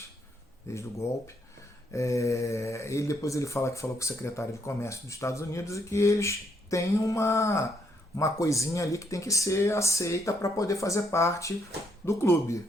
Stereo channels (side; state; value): both; normal; correlation 0.73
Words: desde o golpe. Depois ele falou com o secretário de Comércio dos Estados Unidos e que eles têm uma coisinha ali que tem que ser aceita para poder fazer parte do clube.